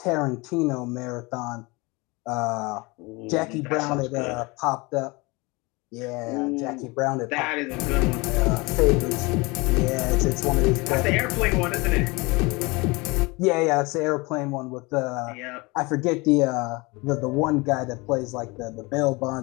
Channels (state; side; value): quieter; right; 25.4 dB